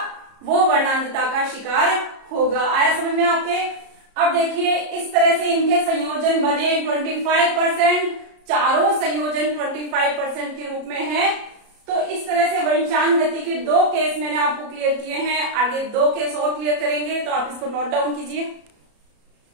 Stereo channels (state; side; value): late; left; 33 ms